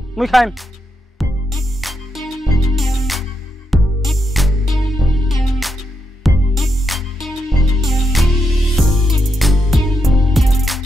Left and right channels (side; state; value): both; normal; correlation 0.82